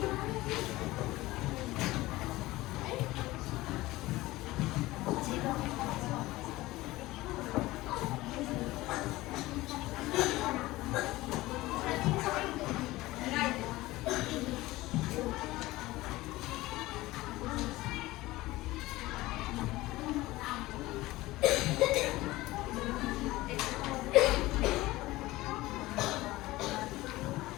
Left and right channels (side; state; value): right; quieter; 18.6 dB